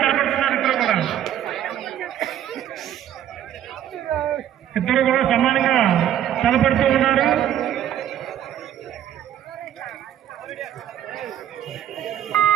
తలపడుతున్నారు ఇద్దరు కూడా సమానంగా తలపడుతూ ఉన్నారు.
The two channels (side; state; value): left; quieter; 10.8 dB